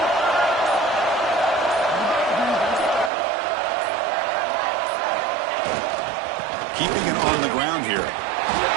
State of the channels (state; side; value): drops out; left; at 3.1 s